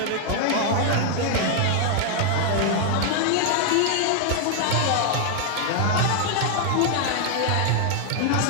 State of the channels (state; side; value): different; both; correlation 0.00